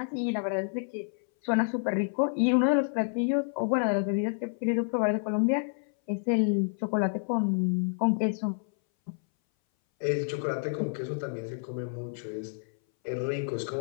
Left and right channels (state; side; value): silent; right; 59 dB below the other